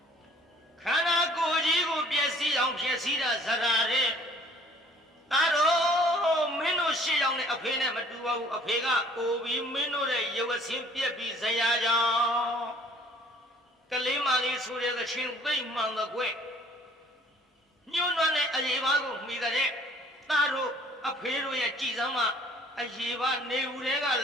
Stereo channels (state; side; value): normal; both; correlation 0.55